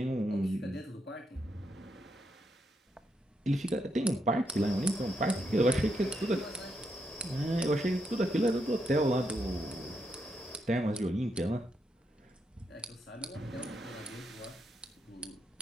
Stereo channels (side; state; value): both; normal; correlation 0.81